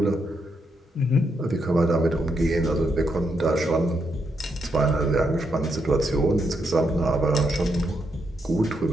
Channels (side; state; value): both; normal; correlation 0.80